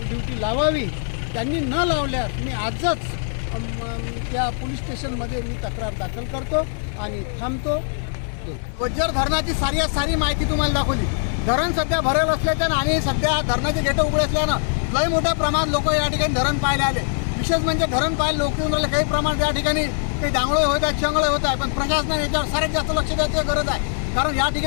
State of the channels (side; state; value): right; silent; 64 dB below the other